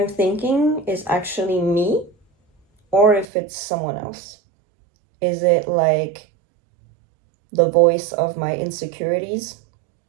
thinking is actually me or if it's someone else. Is it like the voice of my insecurities?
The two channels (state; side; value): drops out; left; at 3.2 s